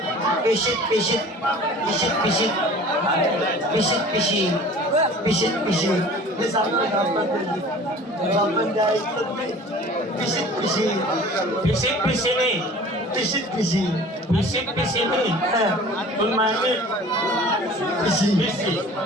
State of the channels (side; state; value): both; normal; correlation 0.44